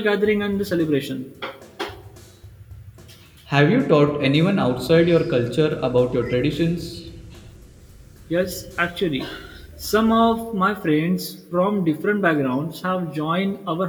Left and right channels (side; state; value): both; identical; correlation 1.00